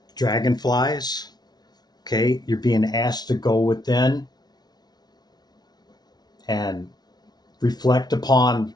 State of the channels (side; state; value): right; late; 0.19 ms